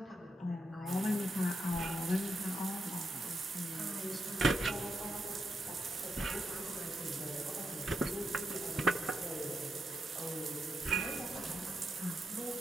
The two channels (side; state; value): both; normal; correlation 0.83